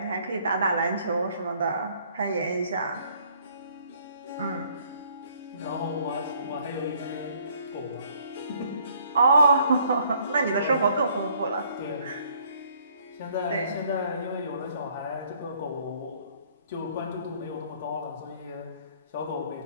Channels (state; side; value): inverted; both; correlation -0.62